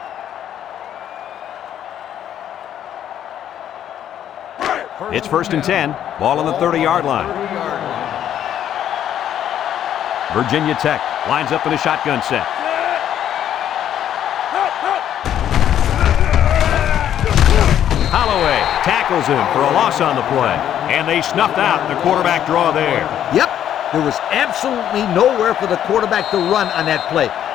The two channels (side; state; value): right; quieter; 10.5 dB